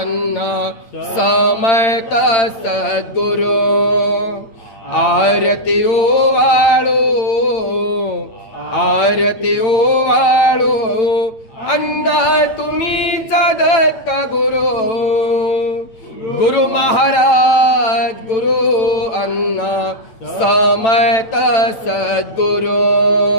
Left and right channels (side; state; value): right; late; 8.9 ms